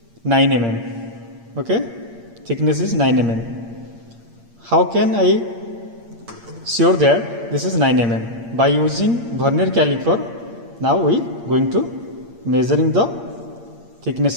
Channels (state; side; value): late; left; 8.6 ms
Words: 9 mm. Okay, thickness is 9 mm. How can I sure that this is 9 mm? By using vernier caliper, now we going to measuring the thickness